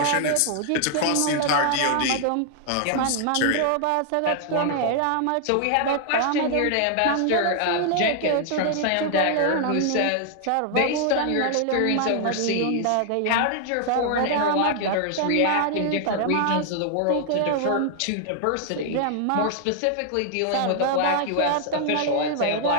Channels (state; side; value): different; both; correlation 0.00